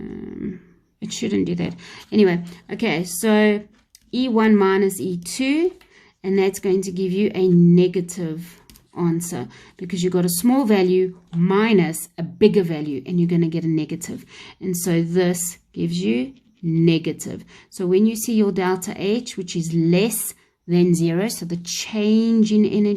It shouldn't do that. Anyway, okay, so E1 minus E2, and that's going to give you a negative answer because you got a small value minus a bigger value, and you're going to get a negative. And so this gives you negative. So when you see your delta H, which is less than 0, so the change in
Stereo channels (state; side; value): identical; both; correlation 1.00